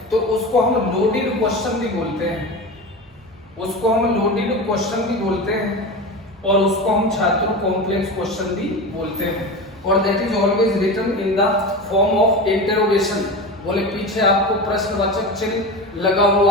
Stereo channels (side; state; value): both; normal; correlation 0.27